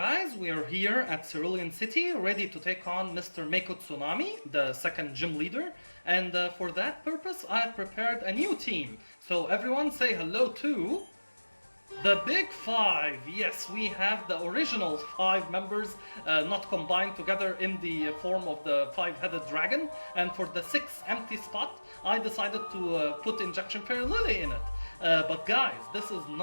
we are here at Cerulean City, ready to take on Mr. Mako Tsunami, the second gym leader. And for that purpose, I have prepared a new team. So everyone say hello to... the Big Five! Yes, we have the original 5 members not combined together in the form of the 5-headed dragon. And for the 6th empty spot, I decided to put Injection Fairy Lily in it. But guys, this is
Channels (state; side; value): inverted; both; correlation -1.00